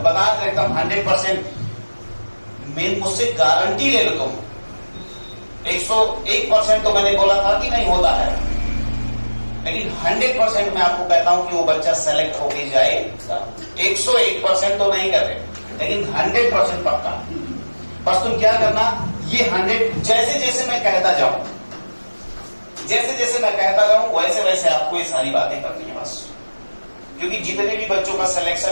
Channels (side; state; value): both; inverted; correlation -1.00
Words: बता एकदम 100%, मुझसे गारंटी ले लो तुम, 101% तो मैंने बोला था कि नहीं होता है, लेकिन 100% मैं आपको कहता हूं कि वो बच्चा सेलेक्ट होके जाएगा। 101% तो नहीं कर रहे, लेकिन 100% पक्का। बस तुम क्या करना, ये 100 जैसे जैसे मैं कहता जाऊं, वैसे वैसे आपको ये सारी बातें करनी है बस। क्योंकि जितने भी बच्चों का